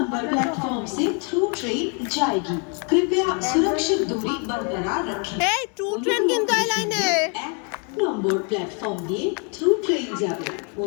प्लेटफॉर्म से थ्रू ट्रेन जाएगी, कृपया सुरक्षित दूरी बरकरार रखें। এই টু ট্রেন কিন্তু এই লাইনে এক নম্বর প্ল্যাটফর্ম দিয়ে থ্রু ট্রেন যাবে,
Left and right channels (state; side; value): quieter; right; 37.3 dB